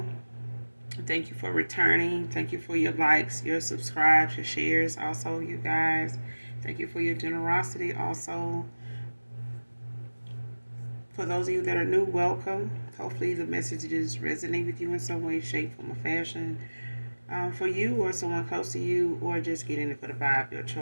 Thank you for returning. Thank you for your likes, your subscribes, your shares. Also, you guys, thank you for your generosity. Also, for those of you that are new, welcome. Hopefully, the messages resonate with you in some way, shape, form, or fashion. For you or someone close to you, or just getting it for the vibe, your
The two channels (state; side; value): inverted; both; correlation -1.00